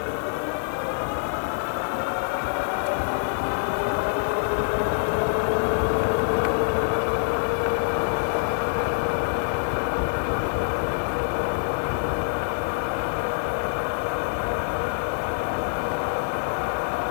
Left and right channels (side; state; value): right; silent; 61 dB below the other